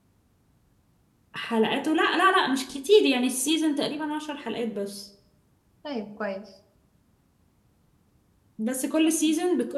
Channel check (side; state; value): both; identical; correlation 1.00